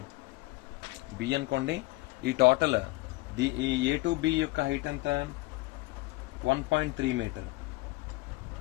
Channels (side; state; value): right; quieter; 20.9 dB